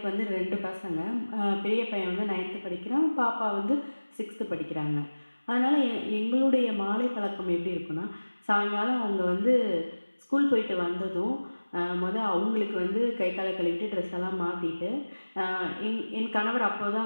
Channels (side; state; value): both; inverted; correlation -1.00